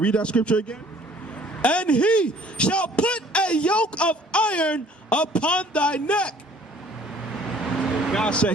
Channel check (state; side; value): normal; both; correlation 0.55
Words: that scripture again. And he shall put a yoke of iron upon thy neck. God said